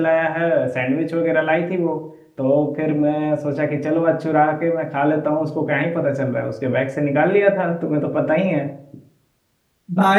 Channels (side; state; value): both; identical; correlation 1.00